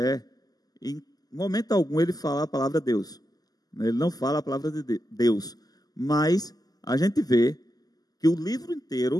em momento algum, ele fala a palavra Deus. Ele não fala a palavra de Deus, mas a gente vê que o livro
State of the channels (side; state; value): right; late; 0.18 ms